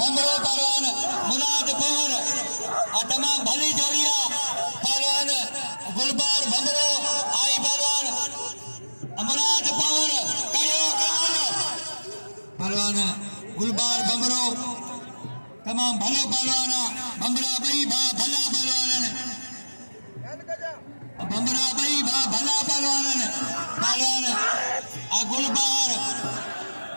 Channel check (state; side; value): inverted; both; correlation -1.00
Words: भंगरो पहलवान मुराद पवन तमाम भली जोड़िया पहलवान गुलबार भंगरो आई पहलवान मुराद पवन करियो पहलवान गुलबार भंगरो तमाम भलो पहलवाना भंगरा बई भा भला पहलवान भंगरा बई भा भला पहलवान पहलवान गुलबार